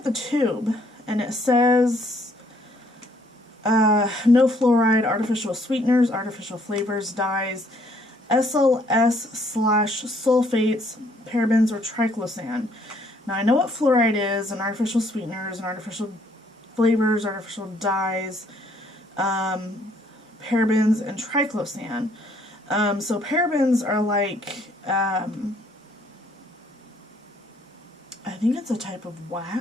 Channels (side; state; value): both; normal; correlation 0.65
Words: the tube, and it says no fluoride, artificial sweeteners, artificial flavors, dyes, SLS/sulfates, parabens, or triclosan. Now I know what fluoride is, and artificial sweeteners, and artificial flavors, artificial dyes, parabens, and triclosan. So parabens are like, I think it's a type of